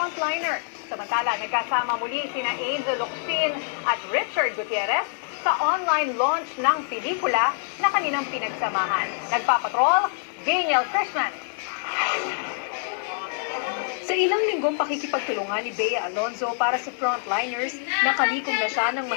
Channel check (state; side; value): silent; right; digital silence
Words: Samantala, nagkasama muli sina Angel Locsin at Richard Gutierrez sa online launch ng pelikula na kanilang pinagsamahan. Nagpapatrol, Daniel Christman. Sa ilang linggong pakikipagtulungan ni Bea Alonzo para sa frontliners, nakalikom na siya ng